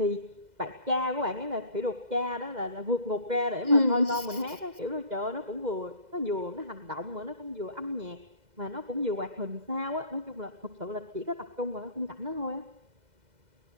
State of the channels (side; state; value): left; late; 2.0 ms